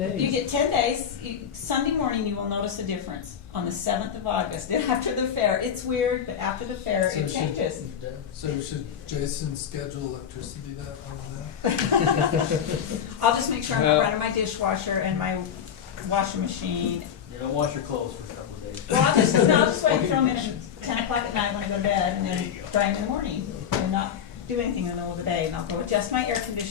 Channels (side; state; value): right; quieter; 8.4 dB